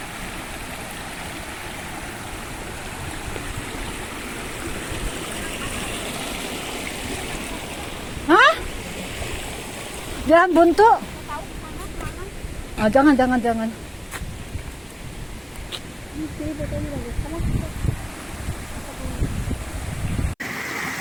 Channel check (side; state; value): both; identical; correlation 1.00